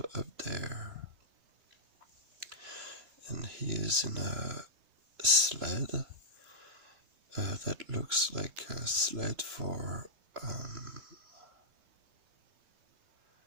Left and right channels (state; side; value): late; left; 3.0 ms